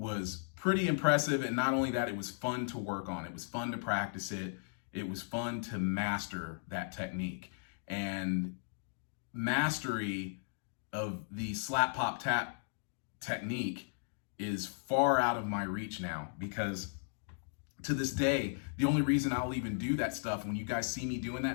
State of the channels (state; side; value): silent; right; digital silence